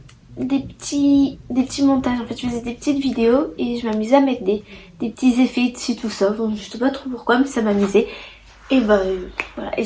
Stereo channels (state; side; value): identical; both; correlation 1.00